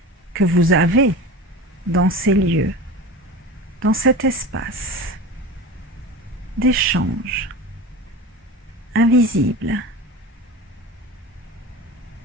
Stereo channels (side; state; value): both; normal; correlation 0.32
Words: que vous avez dans ces lieux, dans cet espace d'échange invisible.